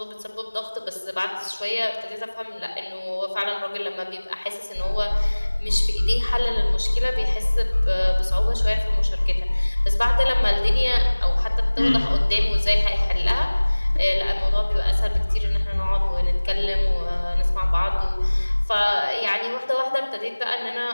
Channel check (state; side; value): inverted; both; correlation -1.00